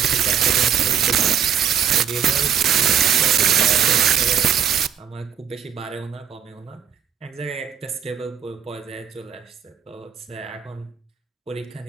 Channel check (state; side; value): quieter; left; 8.4 dB